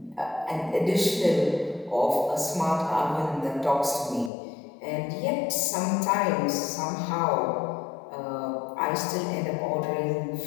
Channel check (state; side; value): drops out; right; at 4.3 s